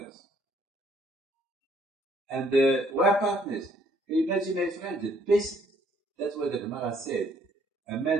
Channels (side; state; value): both; normal; correlation 0.65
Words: And we are partners. Can you imagine, my friend, the best, that's what the Gemara said, a